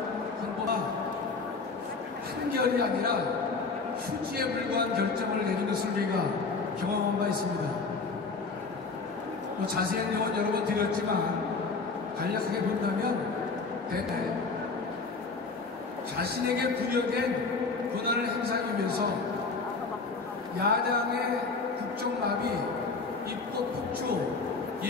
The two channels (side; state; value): right; quieter; 4.3 dB